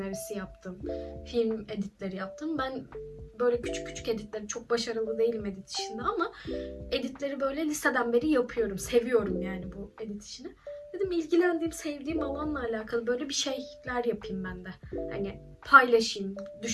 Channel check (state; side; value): identical; both; correlation 1.00